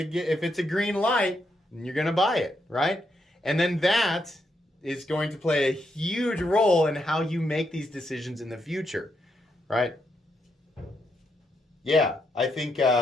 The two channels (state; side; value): normal; both; correlation 0.80